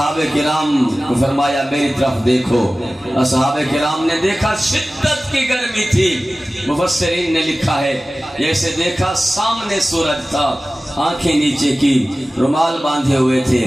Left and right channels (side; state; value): both; normal; correlation 0.96